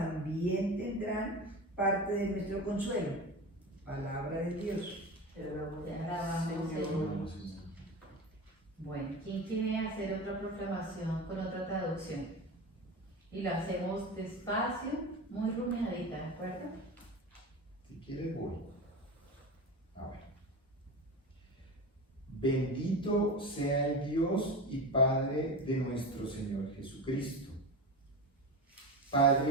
tendrán parte de nuestro consuelo. Palabra de Dios. Te alabamos, Señor. Bueno, ¿quién quiere hacer otra proclamación con otra traducción? Y lo hacemos despacio, muy rumiadita, ¿de acuerdo? Si quieres, voy. Bendito sea el Dios y Padre de nuestro Señor Jesucristo,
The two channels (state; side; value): normal; both; correlation 0.27